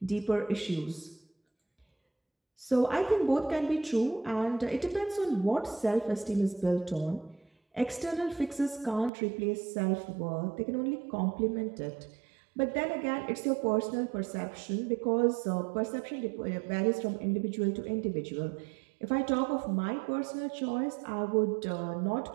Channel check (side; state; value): left; drops out; at 9.1 s